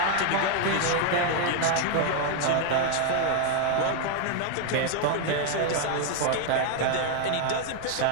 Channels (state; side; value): different; both; correlation 0.01